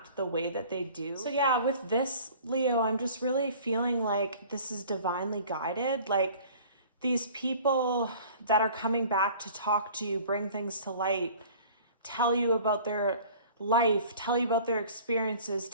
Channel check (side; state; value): both; inverted; correlation -0.47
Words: the way that they do. So yeah, with this, Leo, I'm just really feeling like this is divinely guided. Like these people that are coming back to talk to you, bring things to light, tell you about their life, tell you about their experiences,